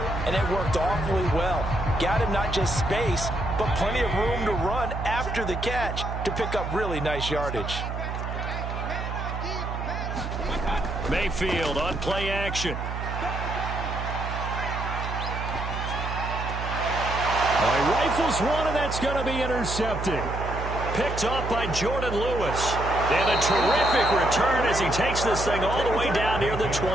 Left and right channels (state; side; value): noise; right; hum, 5 dB below the sound